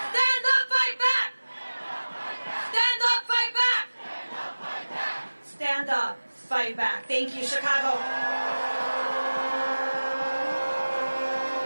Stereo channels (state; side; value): inverted; both; correlation -1.00